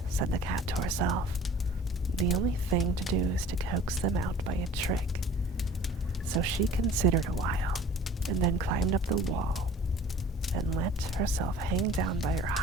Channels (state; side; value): normal; both; correlation 0.47